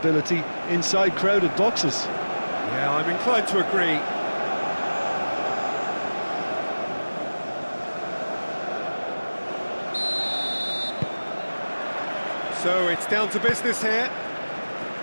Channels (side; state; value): both; inverted; correlation -1.00